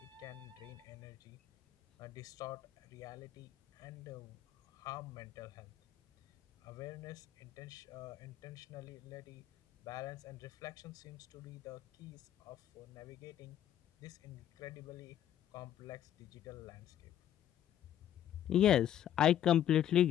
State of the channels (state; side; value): quieter; right; 11.0 dB